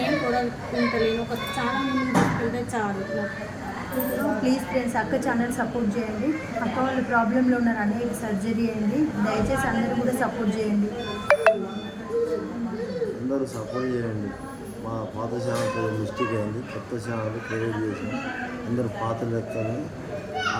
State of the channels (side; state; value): both; identical; correlation 1.00